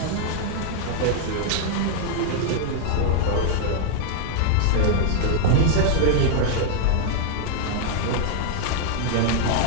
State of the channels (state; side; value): different; both; correlation -0.01